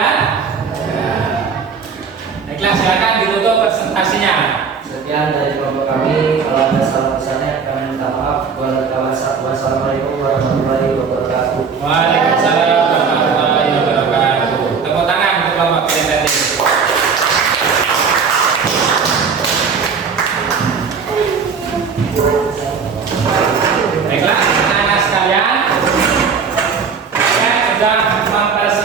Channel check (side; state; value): left; quieter; 5.8 dB